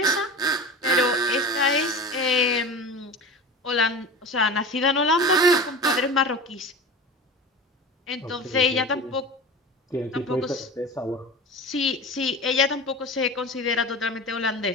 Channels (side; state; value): both; normal; correlation 0.31